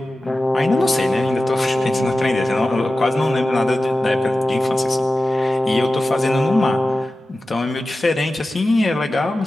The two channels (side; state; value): both; normal; correlation 0.94